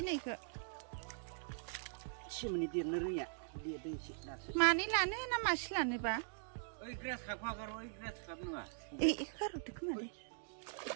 नैखौ मानै लानो ना मासे लानोबा गारहरदो खोमा दे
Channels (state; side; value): silent; left; digital silence